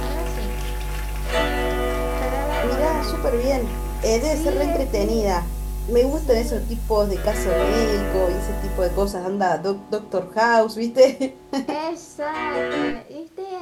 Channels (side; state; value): both; identical; correlation 1.00